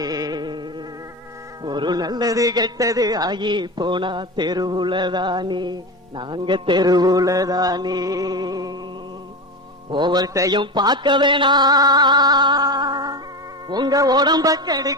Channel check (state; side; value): normal; both; correlation 0.23